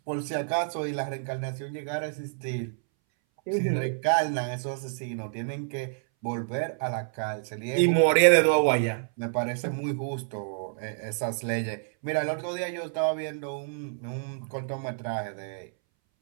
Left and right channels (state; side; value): silent; left; 59 dB below the other